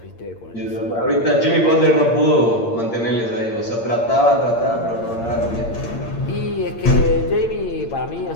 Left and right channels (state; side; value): late; right; 8.7 ms